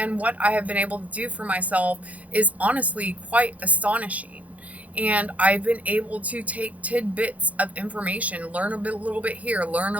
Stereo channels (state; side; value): late; left; 0.070 ms